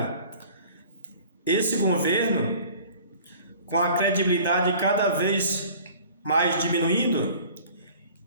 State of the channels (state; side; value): inverted; both; correlation -0.47